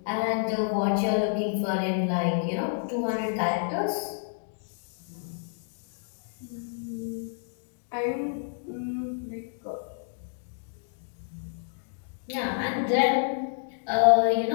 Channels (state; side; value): silent; right; digital silence